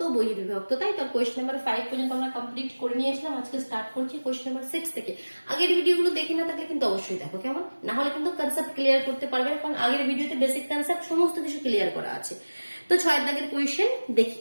ও বহির্বিভক্ত, তাই তো কোয়েশ্চেন নাম্বার 5 পর্যন্ত আমরা কমপ্লিট করে নিয়েছিলাম। আজকে স্টার্ট করছি কোয়েশ্চেন নাম্বার 6 থেকে। আগের ভিডিওগুলো দেখে না থাকলে কিন্তু অবশ্যই দেখো, কেমন? না হলে কিন্তু কনসেপ্ট ক্লিয়ার করতে পারবে, কারণ আগের ভিডিওতে বেসিক কনসেপ্ট সমস্ত কিছু ক্লিয়ার করা আছে। তো 6 দাগের কোয়েশ্চেন দেখি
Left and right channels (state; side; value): inverted; both; correlation -1.00